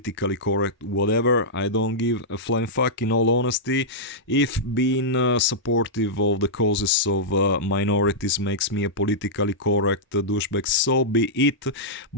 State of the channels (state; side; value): normal; both; correlation -0.10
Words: correct, whatever. I don't give a flying fuck, in all honesty. If being supportive of the causes of minorities makes me a politically correct douchebag, so be it.